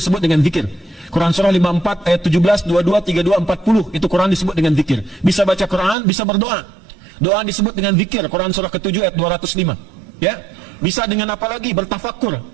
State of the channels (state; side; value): drops out; left; at 6.0 s